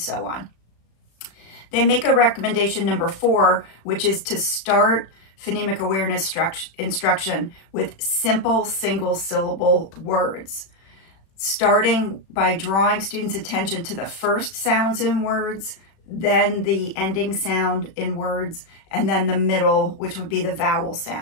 on. They make a recommendation number 4, which is to start phonemic awareness instruction with simple single syllable words, starting by drawing students' attention to the first sounds in words, then the ending sound in words, and then the middle, which would be the vowel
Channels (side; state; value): right; late; 36 ms